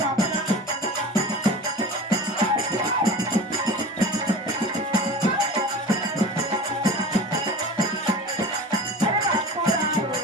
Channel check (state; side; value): normal; both; correlation 0.35